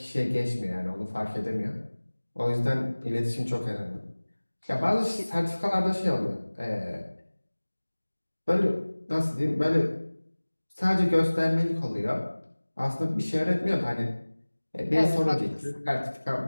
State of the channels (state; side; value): inverted; both; correlation -1.00